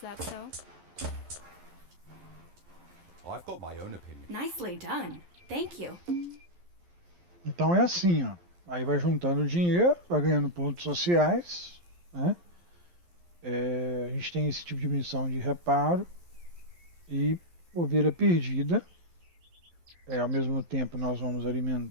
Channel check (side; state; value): left; late; 11 ms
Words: so? I've got my own opinion. Nicely done. Thank you. Então é assim, ó. Aí vai juntando dinheiro, vai ganhando pontos sociais, né? A gente tem esse tipo de missão de reparo e ovelha perdida. Ao mesmo tempo nós vamos